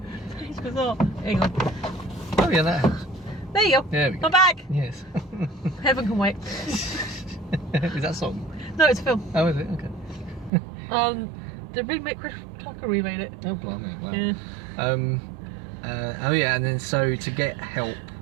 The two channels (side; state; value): left; drops out; at 10.5 s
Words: it's bizarre. Hang on. Oh yeah, that helps. There you go. There we go. I'm back. Yes. Heaven can wait. Is that a song? No, it's a film. Oh, is it? Okay. The remake, Chris Tucker remade it. Oh, blimey. Wow. Yeah. Oh yeah, and then so to get help